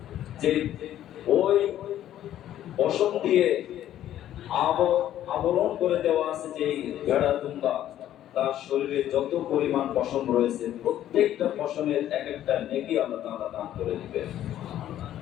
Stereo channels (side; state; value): right; quieter; 12.0 dB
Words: যে ওই পশম দিয়ে আবরণ করে দেওয়া আছে যে ভেড়া, দুম্বা, তার শরীরে যত পরিমাণ পশম রয়েছে প্রত্যেকটা পশমের এক একটা নেকি আল্লাহ তাআলা দান করে দিবেন।